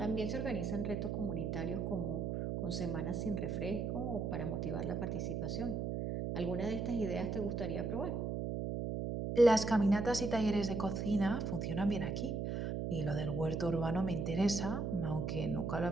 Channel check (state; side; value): noise; right; hum, 1 dB below the sound